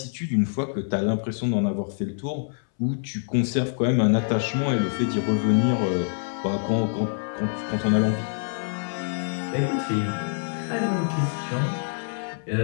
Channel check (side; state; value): right; silent; 61 dB below the other